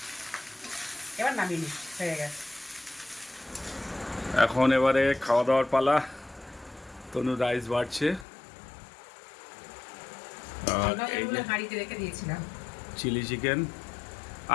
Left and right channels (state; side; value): drops out; right; at 8.2 s